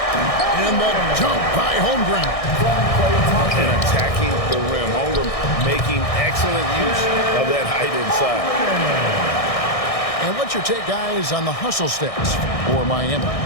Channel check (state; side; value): late; right; 1.6 ms